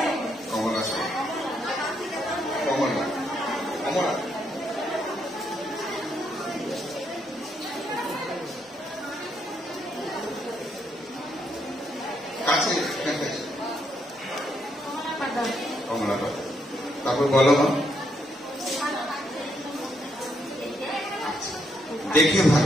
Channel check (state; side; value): normal; both; correlation 0.76